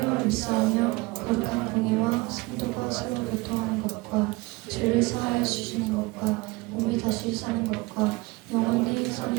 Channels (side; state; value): left; quieter; 23.2 dB